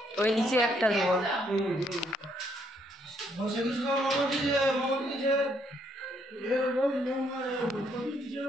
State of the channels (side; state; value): both; normal; correlation 0.71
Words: ওই নিচে একটা দেবো।